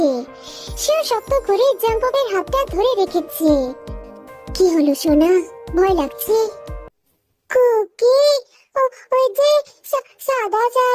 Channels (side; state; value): both; identical; correlation 1.00